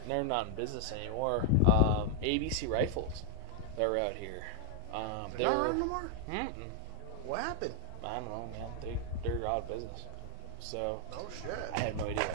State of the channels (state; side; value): different; both; correlation 0.00